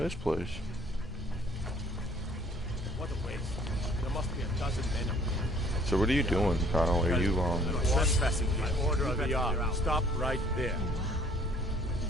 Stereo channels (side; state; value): both; normal; correlation 0.57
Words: this place. What a waste. There must be a dozen men up there. So what are you doing, Kyle? Are you Trespassing by order of the yard. Stop right there.